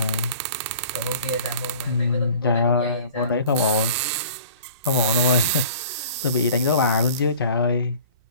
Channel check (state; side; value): inverted; both; correlation -0.46